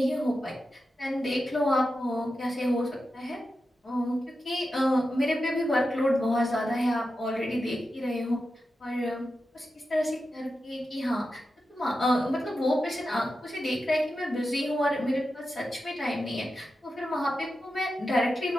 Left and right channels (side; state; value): both; normal; correlation 0.90